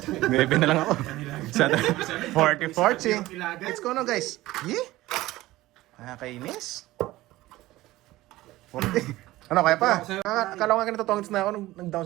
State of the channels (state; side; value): quieter; left; 17.5 dB